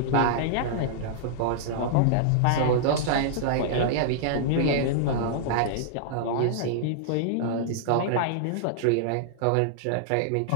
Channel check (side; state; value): both; different; correlation -0.01